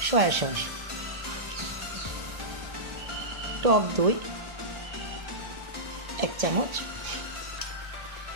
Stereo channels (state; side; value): late; left; 1.7 ms